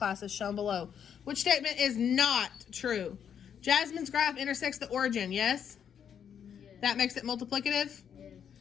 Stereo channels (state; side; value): quieter; right; 8.2 dB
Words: as shown below. Which statement is not true? Jasmine's graph intersects the origin, yes? That makes it multiplicative?